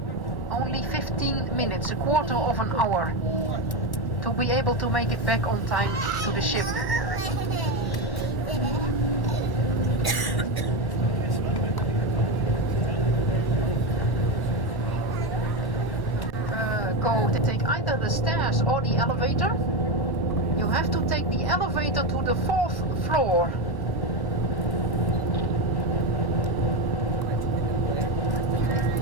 Only 15 minutes, a quarter of an hour. To be able to make it back on time to the ship. Go to take either the stairs or the elevator. You have to take the elevator to the 4th floor.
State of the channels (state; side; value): late; right; 1.1 ms